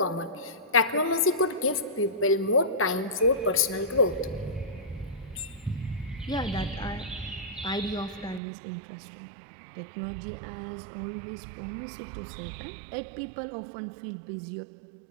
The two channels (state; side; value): drops out; left; at 8.4 s